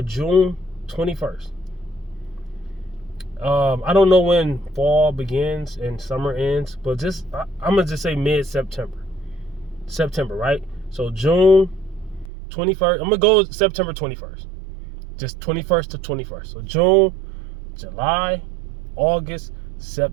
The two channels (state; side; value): drops out; left; at 12.3 s